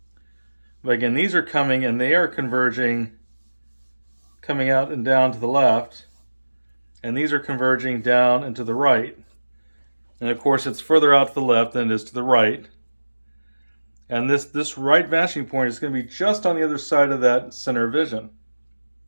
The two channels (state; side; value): inverted; both; correlation -1.00